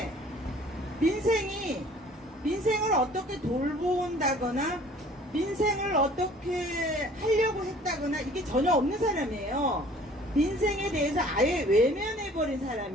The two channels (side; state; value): both; normal; correlation 0.52